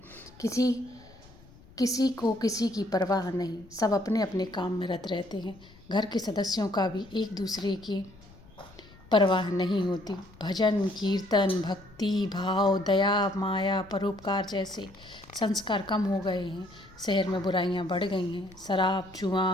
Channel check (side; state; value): left; noise; rumble, 24 dB below the sound